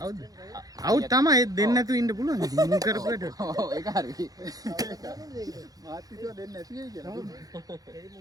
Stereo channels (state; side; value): late; left; 0.18 ms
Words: අවුට් තමයි දෙන්න නැතුව ඉන්න පුළුවන්. ඉතින් මුන් කරපුවට. ඔව් ඒක හරි. මාත්‍රිකව දෙන්න නැති වෙයි කියලා. ඒ